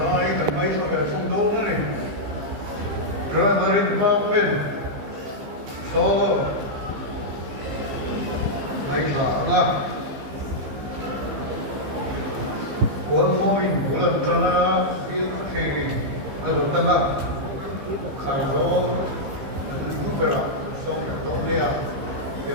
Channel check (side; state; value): left; late; 15 ms